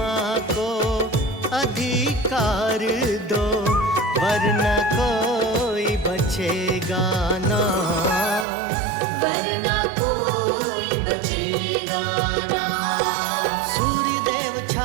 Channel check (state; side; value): drops out; left; at 8.5 s